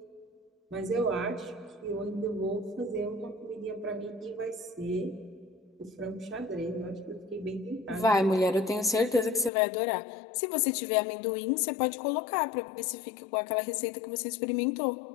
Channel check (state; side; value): drops out; right; at 9.5 s